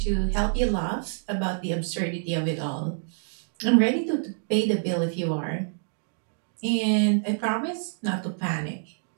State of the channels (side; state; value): left; silent; digital silence